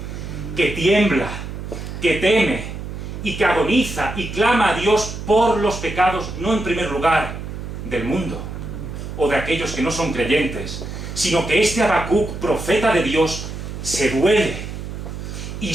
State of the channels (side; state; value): right; noise; hum, 8 dB below the sound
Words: que tiembla, que teme y que agoniza y clama a Dios por los pecados, no en primer lugar del mundo o de aquellos que no son creyentes, sino que este Habacuc, profeta de Dios, se duele y